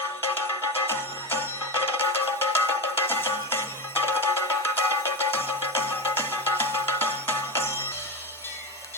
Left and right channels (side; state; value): both; normal; correlation 0.19